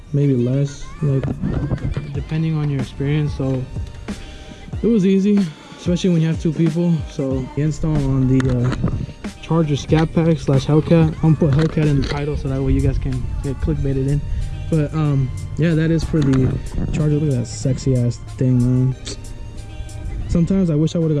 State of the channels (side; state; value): both; identical; correlation 1.00